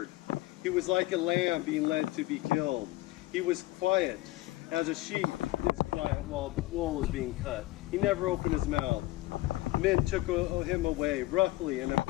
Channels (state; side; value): quieter; right; 18.2 dB